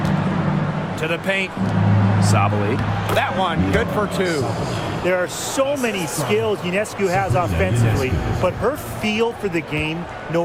To the paint. Sabali. That one, good for 2. There are so many skills Ionescu has offensively, but her feel for the game,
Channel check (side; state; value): both; identical; correlation 1.00